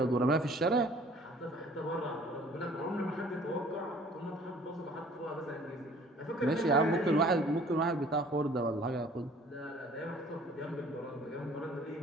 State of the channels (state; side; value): normal; both; correlation 0.53